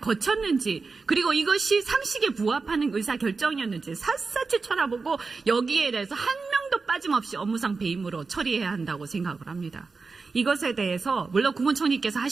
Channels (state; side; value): quieter; left; 4.4 dB